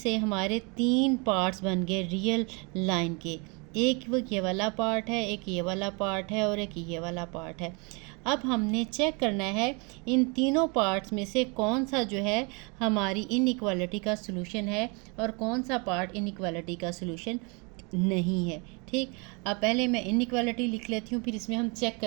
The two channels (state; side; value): quieter; left; 31.9 dB